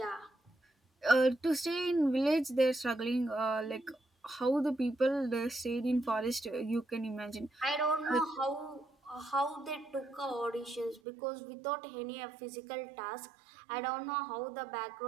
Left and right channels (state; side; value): drops out; left; at 11.0 s